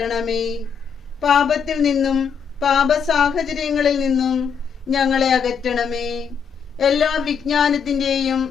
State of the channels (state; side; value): quieter; right; 6.6 dB